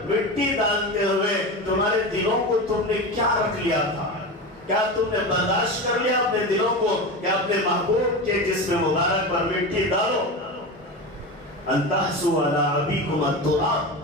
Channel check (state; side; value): normal; both; correlation 0.24